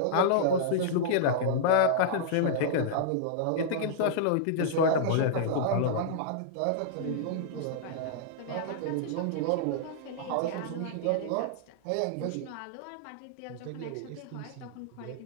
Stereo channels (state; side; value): different; both; correlation -0.02